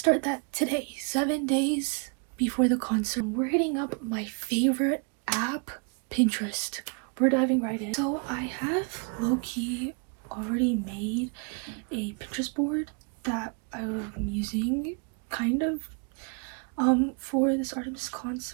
that today, 7 days before the concert. We're hitting up my favorite app, Pinterest. We're diving right in. So I have low-key already made a Pinterest board that I'm using kind of for this Artemis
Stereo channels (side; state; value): left; quieter; 37.4 dB